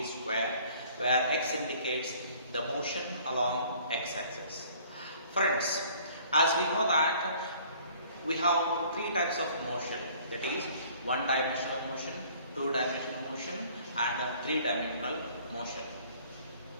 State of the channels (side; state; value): both; inverted; correlation -0.55